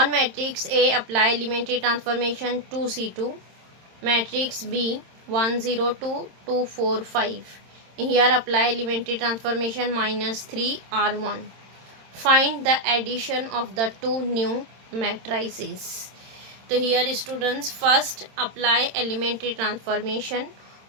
matrix A apply elementary transformation 2C2. Matrix B 1 0 2 2 4 5. Here apply elementary transformation minus 3 R1. Find the addition of the two new matrices. So here students first apply elementary transformation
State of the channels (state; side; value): late; left; 27 ms